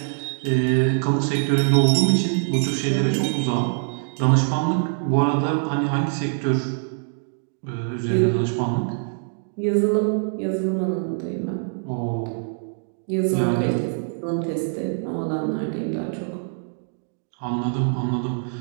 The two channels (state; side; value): silent; left; digital silence